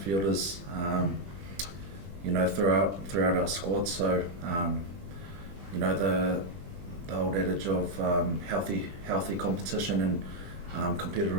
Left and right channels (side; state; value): left; late; 20 ms